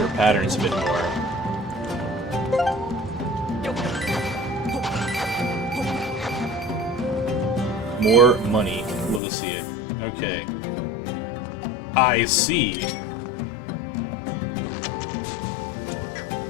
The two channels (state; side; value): drops out; right; at 9.2 s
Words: patterns a bit more. More money. Love to see it. Okay. I see.